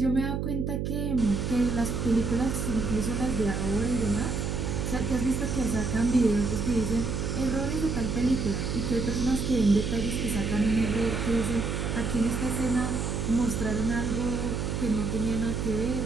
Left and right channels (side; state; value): right; noise; hum, 1 dB below the sound